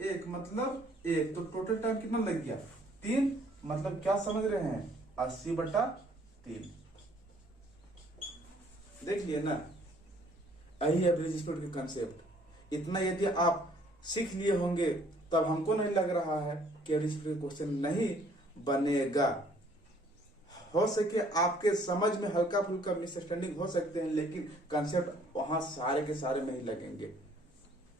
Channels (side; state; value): both; normal; correlation 0.61